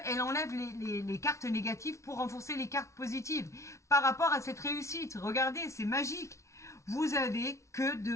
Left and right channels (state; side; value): late; right; 0.14 ms